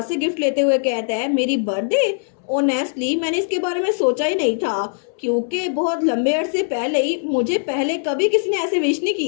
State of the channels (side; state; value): right; silent; 65 dB below the other